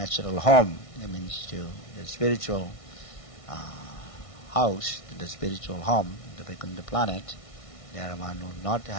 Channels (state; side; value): late; right; 1.6 ms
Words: home, that means to the spiritual house, to the spiritual home, the Vaikuntha planet. There one will not